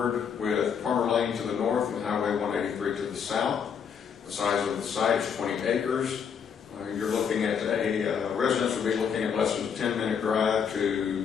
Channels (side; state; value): right; quieter; 7.1 dB